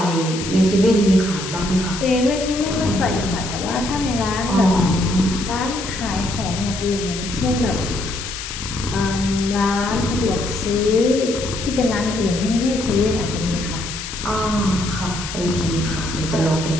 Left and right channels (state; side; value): noise; left; hiss, 8 dB below the sound